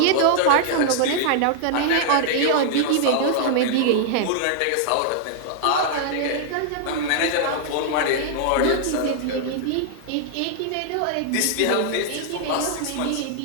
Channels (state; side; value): different; both; correlation -0.01